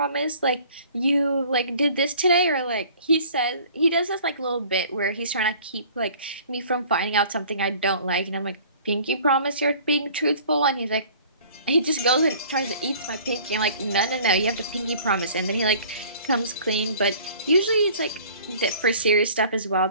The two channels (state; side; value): inverted; both; correlation -0.50